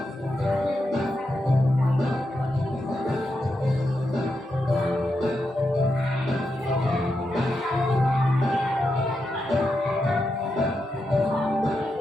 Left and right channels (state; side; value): normal; both; correlation 0.86